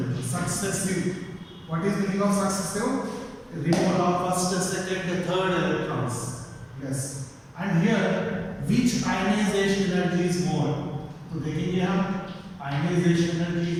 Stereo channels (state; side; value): identical; both; correlation 1.00